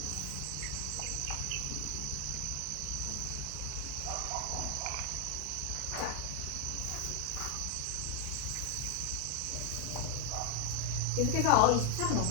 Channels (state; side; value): different; both; correlation 0.00